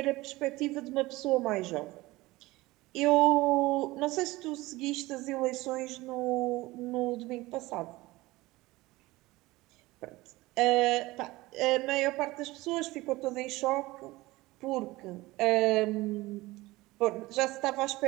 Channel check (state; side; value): quieter; left; 19.8 dB